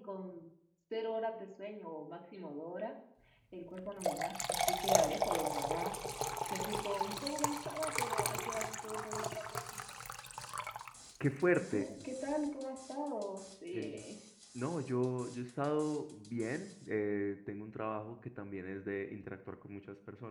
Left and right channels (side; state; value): both; identical; correlation 1.00